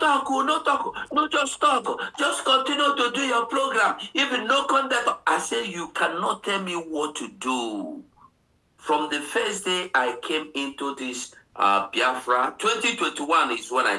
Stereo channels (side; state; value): both; identical; correlation 1.00